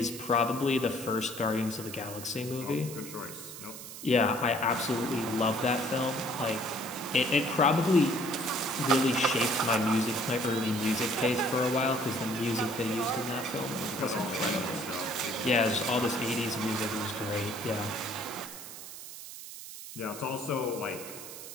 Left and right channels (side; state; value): right; noise; hiss, 12 dB below the sound